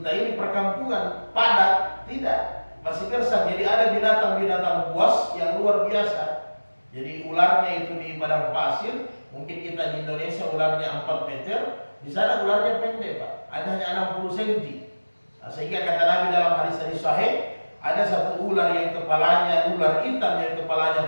ini, perkampungan padat, tidak, masih gersang. Jadi ada binatang-binatang buas yang luar biasa. Jadi ularnya itu di padang pasir, mungkin kita di Indonesia ularnya 4 meter, di sana ularnya pendek Pak, ada hanya 60 cm. Nah, sehingga kata Nabi dalam hadis sahih, ada satu ular yang kepalanya, ular hitam yang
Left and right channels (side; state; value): both; inverted; correlation -1.00